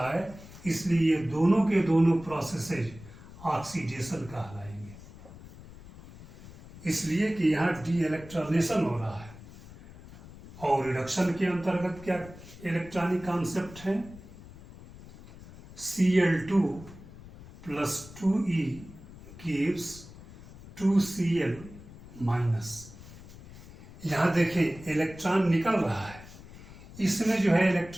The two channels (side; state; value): left; noise; rumble, 18 dB below the sound